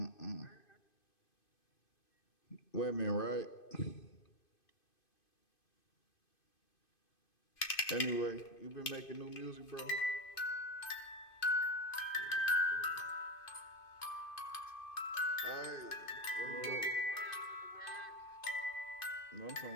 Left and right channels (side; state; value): right; late; 2.5 ms